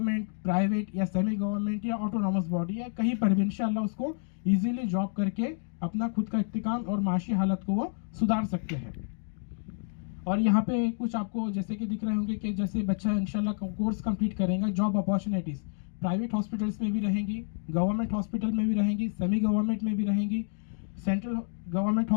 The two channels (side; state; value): right; silent; 58 dB below the other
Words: प्राइवेट या सेमी गवर्नमेंट या ऑटोनॉमस बॉडी या कहीं पर भी इंशाल्लाह उसको इजीली जॉब करके अपना खुद का इस्तेकाम और माशी हालत को वो सुधार सकते हैं। और यहाँ पे कुछ आपको जैसे कि दिख रहे होंगे कि जैसे बच्चा इंशाल्लाह कोर्स कंप्लीट करेगा, जॉब अपॉर्चुनिटीज़ प्राइवेट हॉस्पिटल्स में भी रहेंगी, गवर्नमेंट हॉस्पिटल में भी रहेंगी, सेमी गवर्नमेंट में भी रहेंगी, central government